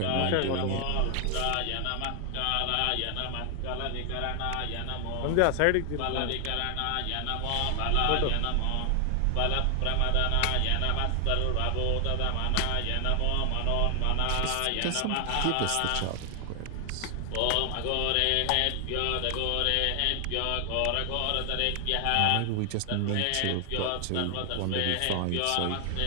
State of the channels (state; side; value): different; both; correlation 0.00